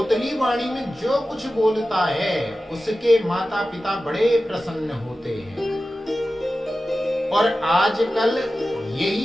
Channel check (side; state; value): both; normal; correlation 0.94